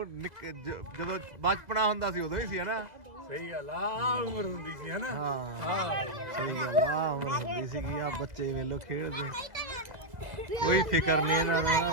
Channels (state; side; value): late; left; 2.0 ms